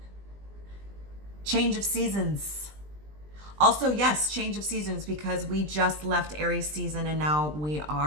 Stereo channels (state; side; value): late; left; 20 ms